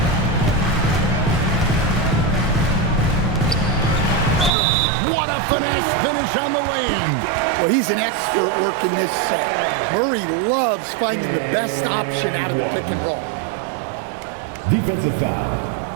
What a finesse finish on the way-in. Well, he's an expert working this set. Murray loves finding the best option out of the pick and roll. Defensive foul.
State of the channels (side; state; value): left; drops out; at 4.5 s